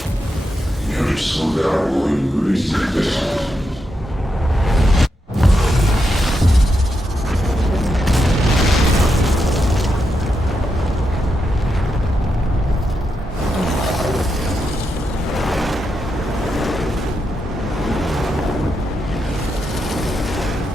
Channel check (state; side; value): normal; both; correlation 0.84